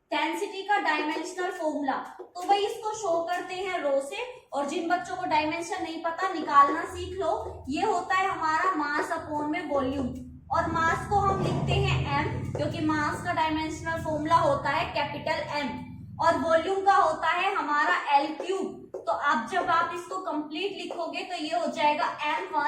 डेंसिटी का डायमेंशनल फॉर्मूला। तो भाई इसको शो करते हैं रो से, और जिन बच्चों को डायमेंशन नहीं पता निकालना सीख लो। ये होता है हमारा मास अपॉन में वॉल्यूम, और मास को हम लिखते हैं एम, क्योंकि मास का डायमेंशनल फॉर्मूला होता है कैपिटल एम, और वॉल्यूम का होता है हमारा एल क्यूब। तो अब जब आप इसको कंप्लीट लिखोगे तो ये हो जाएगा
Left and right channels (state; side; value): identical; both; correlation 1.00